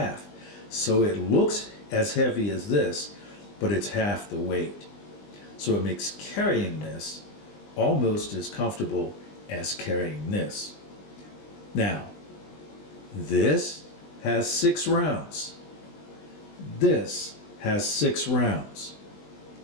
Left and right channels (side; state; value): right; late; 20 ms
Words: so it looks as heavy as this, but it's half the weight. So it makes carrying this almost as comfortable as carrying this. Now, this has 6 rounds. This has 6 rounds.